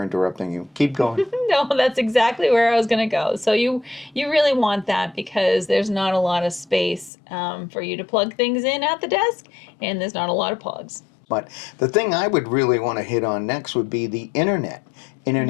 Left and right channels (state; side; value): drops out; right; at 7.1 s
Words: interrupting you. Keep going. No, that's exactly where I was going to go. So you really want that because there's not a lot of space for you to plug things in at the desk, and there's not a lot of plugs. But the thing I would really want to hit on next would be the internet.